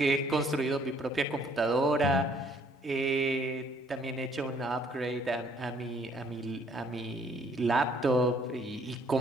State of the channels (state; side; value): normal; both; correlation 0.63